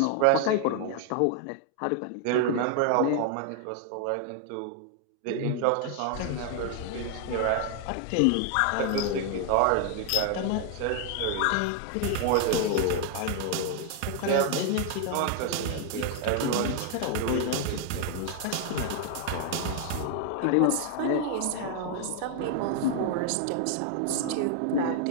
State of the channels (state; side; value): different; both; correlation 0.00